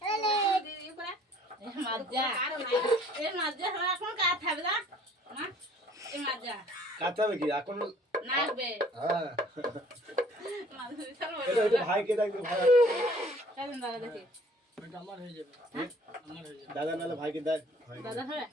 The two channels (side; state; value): both; normal; correlation 0.55